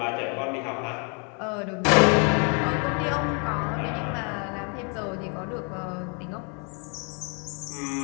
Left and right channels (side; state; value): right; quieter; 36.4 dB